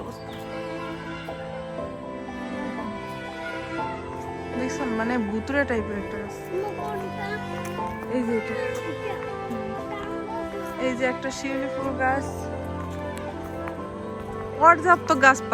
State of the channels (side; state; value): both; identical; correlation 1.00